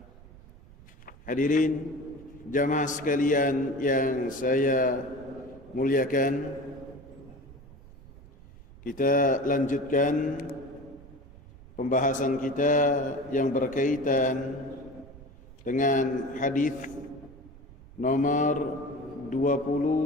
Hadirin jamaah sekalian yang saya muliakan, kita lanjutkan pembahasan kita yang berkaitan dengan hadis nomor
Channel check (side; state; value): right; noise; rumble, 20 dB below the sound